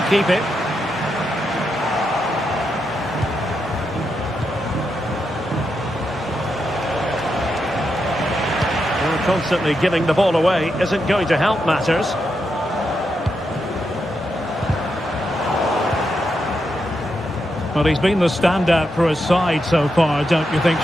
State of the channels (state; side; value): normal; both; correlation 0.84